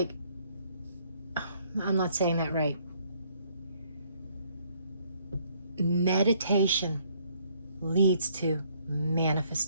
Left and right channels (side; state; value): both; inverted; correlation -0.65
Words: I'm not saying that right. Meditation leads to